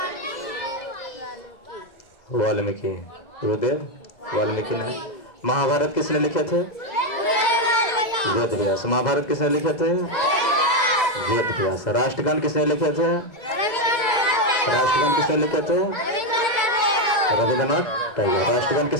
वाल्मीकि, गुरुदेव वाल्मीकि ने। महाभारत किसने लिखे थे? वेद व्यास। महाभारत किसने लिखे थे? वेद व्यास। राष्ट्रगान किसने लिखे थे? राष्ट्रगान किसने लिखे थे? रविंद्रनाथ टैगोर। राष्ट्रगान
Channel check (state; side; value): late; right; 2.2 ms